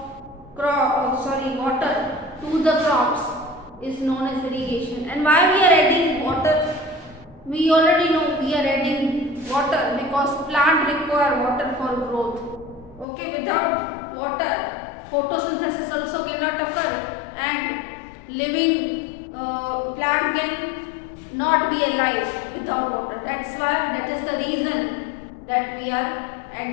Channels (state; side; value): drops out; right; at 13.1 s